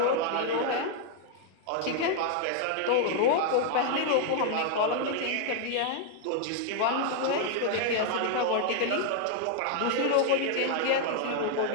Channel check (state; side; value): different; both; correlation 0.00